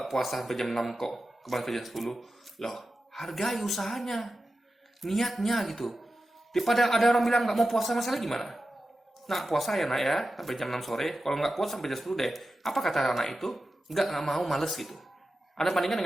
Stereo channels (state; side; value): normal; both; correlation 0.92